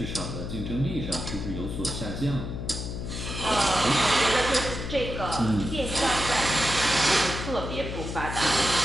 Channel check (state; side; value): noise; left; hum, 6 dB below the sound